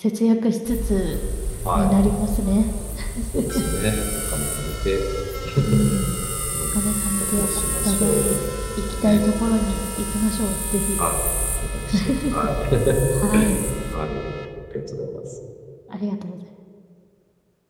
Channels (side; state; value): both; identical; correlation 1.00